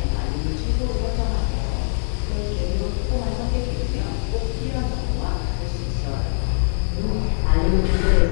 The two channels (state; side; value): silent; right; digital silence